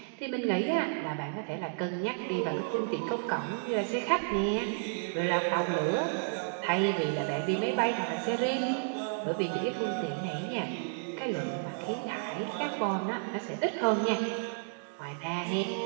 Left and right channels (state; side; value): silent; left; digital silence